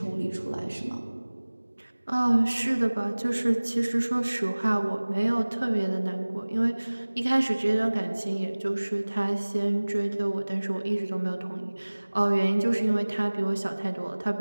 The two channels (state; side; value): inverted; both; correlation -1.00